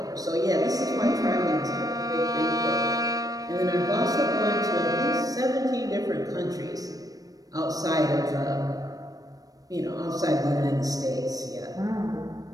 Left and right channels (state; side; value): late; left; 0.18 ms